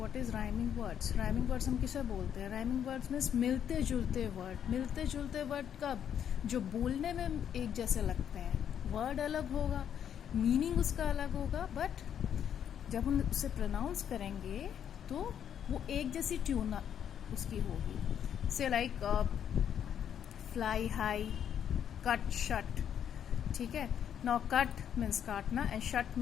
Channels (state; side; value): quieter; right; 9.0 dB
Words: is rhyming words. Rhyming words हम किसे बोलते हैं? Rhyming words means मिलते जुलते वर्ड. मिलते जुलते वर्ड कब? जो बोलने में एक जैसे लगते हैं. वर्ड अलग होगा, मीनिंग उसका अलग होगा, बट जब हम उसे प्रोनाउंस करेंगे तो वो एक जैसी ट्यून उसकी होगी. से like fly high, cut shut. ठीक है. नाउ कट मीन्स काटना एंड शट